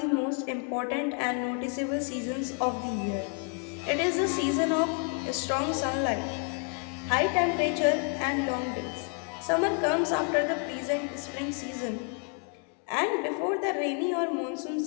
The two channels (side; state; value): right; quieter; 39.3 dB